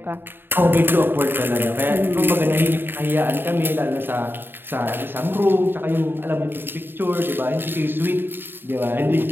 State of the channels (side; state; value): left; late; 0.099 ms